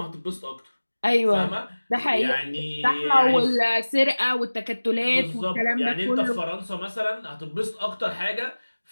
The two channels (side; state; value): both; inverted; correlation -1.00